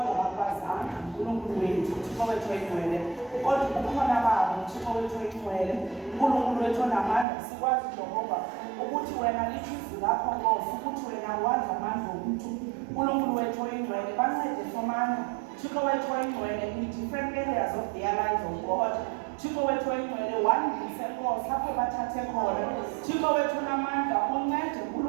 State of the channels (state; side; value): drops out; left; at 7.2 s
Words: bakwazanga uNkulunkulu wethu Thixo wethu oyingcwele kodwa kukhona babo Thixo wethu oyingcwele uNkulunkulu wethu onamandla sikwazi Jehova ukuthi wena lithi izwi lakho Nkosi ukuthi wena wazi amandla omntu uNkulunkulu wethu oyingcwele bancede somandla Thixo wethu oyingcwele in different areas of their lives of God Thixo wethu oyingcwele wandise Nkosi apho bathathe khona Thixo wethu onamandla uncede